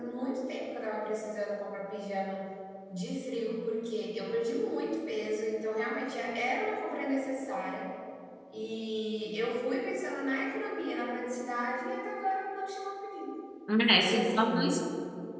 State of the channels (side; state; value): both; identical; correlation 1.00